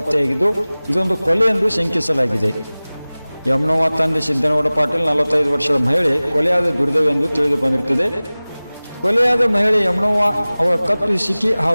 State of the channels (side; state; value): both; inverted; correlation -0.99